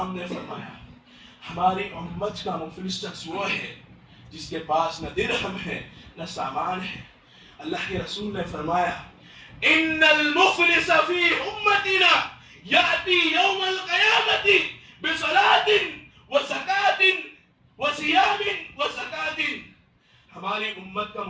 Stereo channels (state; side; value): identical; both; correlation 1.00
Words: نے فرمایا، ہماری امت کا مفلس شخص وہ ہے جس کے پاس نہ درہم ہے نہ سامان ہے۔ اللہ کے رسول نے فرمایا، ان المفلس فی امتنا یاتی یوم القیامت بصلاۃ وزکاۃ وصیام وزکاۃ، ہماری امت کا